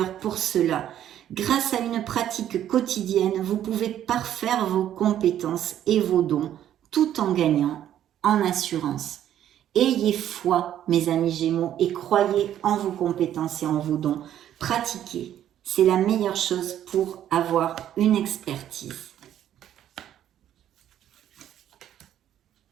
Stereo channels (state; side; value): quieter; left; 11.1 dB